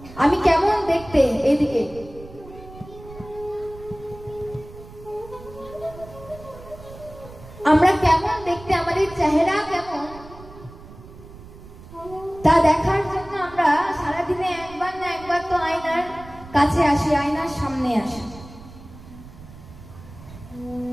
আমি কেমন দেখতে, এদিকে আমরা কেমন দেখতে, আমাদের চেহারা কেমন, তা দেখার জন্য আমরা সারাদিনে একবার না একবার তো আয়নার কাছে আসি, আয়নার সামনে আসি।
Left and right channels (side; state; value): right; noise; rumble, 18 dB below the sound